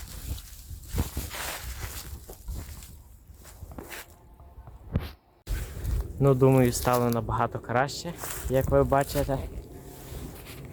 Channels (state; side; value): identical; both; correlation 1.00